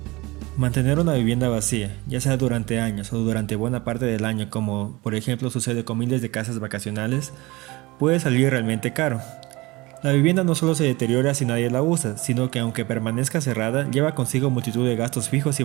Mantener una vivienda vacía, ya sea durante años o durante buena parte del año, como por ejemplo sucede con miles de casas vacacionales, puede salir realmente caro. La vivienda no solo se deteriora si nadie la usa, sino que aunque permanezca cerrada, lleva consigo multitud de gastos fijos y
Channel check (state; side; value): quieter; left; 22.3 dB